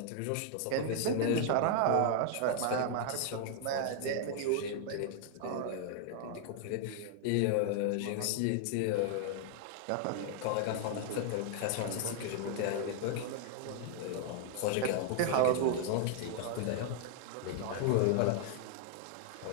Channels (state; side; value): different; both; correlation 0.00